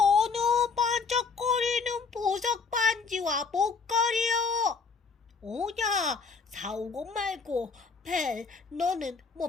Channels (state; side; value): quieter; right; 5.0 dB